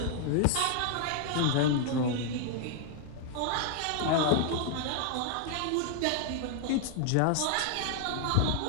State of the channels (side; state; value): both; different; correlation 0.00